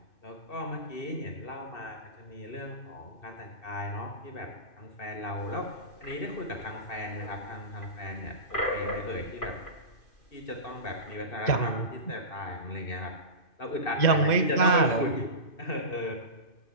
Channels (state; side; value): late; right; 2.5 ms